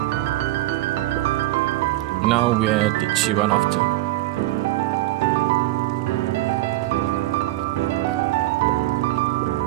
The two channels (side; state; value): left; quieter; 16.8 dB